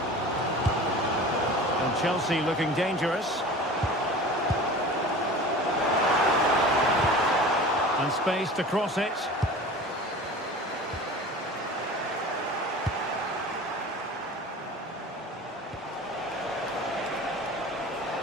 And Chelsea looking dangerous. And space to cross it.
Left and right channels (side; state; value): both; normal; correlation 0.38